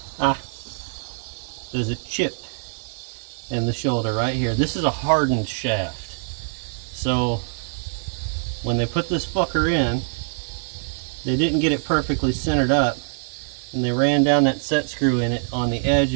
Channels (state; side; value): silent; left; digital silence